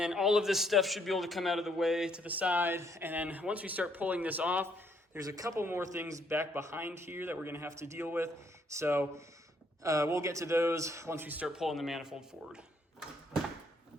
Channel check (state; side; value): normal; both; correlation 0.69